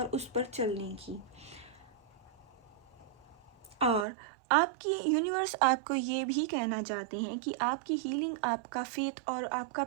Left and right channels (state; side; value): drops out; left; at 4.0 s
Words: उस पर चलने की। और आपकी यूनिवर्स आपको ये भी कहना चाहते हैं कि आपकी हीलिंग, आपका फेथ और आपका